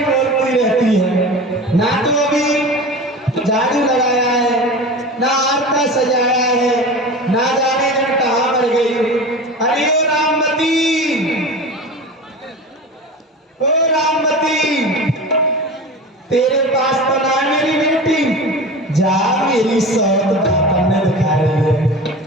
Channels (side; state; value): both; normal; correlation 0.32